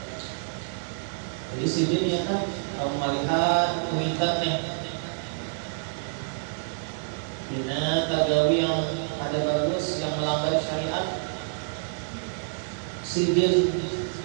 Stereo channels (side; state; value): left; silent; digital silence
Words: Jadi sini ya kan, kamu melihat kuitan nih, bina tagawi yang ada bagus, yang melanggar syariat, sidin